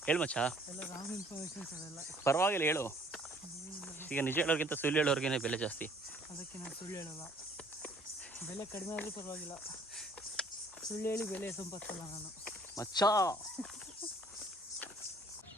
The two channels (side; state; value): both; normal; correlation 0.57